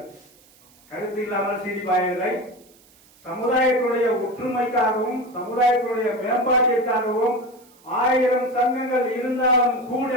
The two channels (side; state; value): right; noise; hiss, 29 dB below the sound